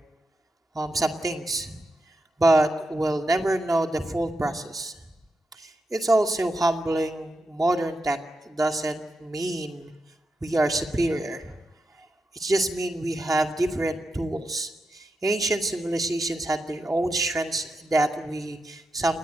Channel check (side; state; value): both; normal; correlation 0.87